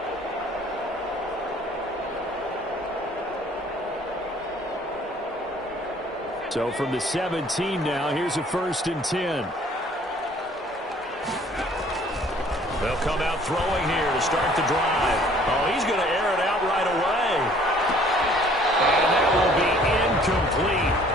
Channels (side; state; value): both; normal; correlation 0.56